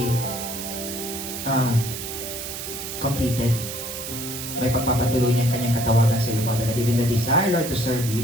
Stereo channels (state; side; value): noise; right; hiss, 7 dB below the sound